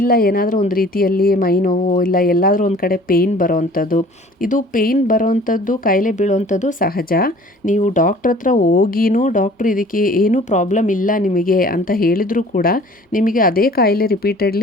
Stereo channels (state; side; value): normal; both; correlation 0.49